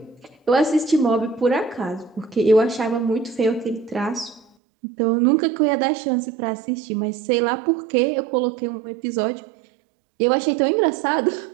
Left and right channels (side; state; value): left; drops out; at 4.5 s